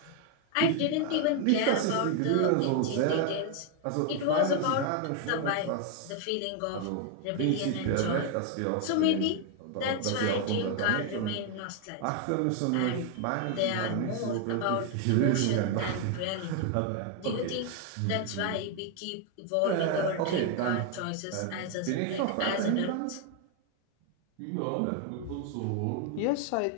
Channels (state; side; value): different; both; correlation 0.00